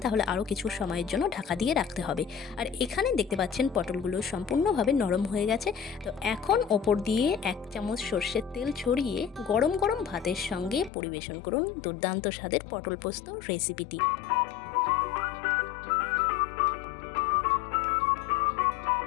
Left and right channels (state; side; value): drops out; right; at 10.9 s